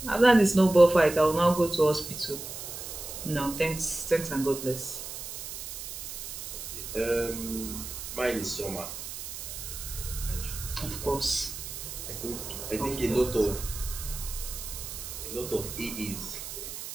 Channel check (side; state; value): right; noise; hiss, 8 dB below the sound